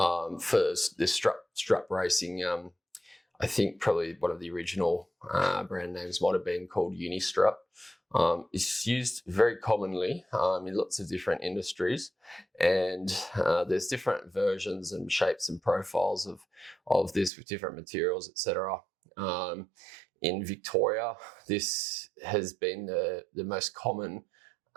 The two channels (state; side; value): drops out; left; at 17.3 s